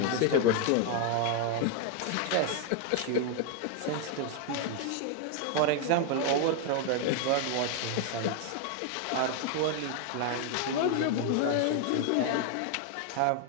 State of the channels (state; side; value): different; both; correlation 0.00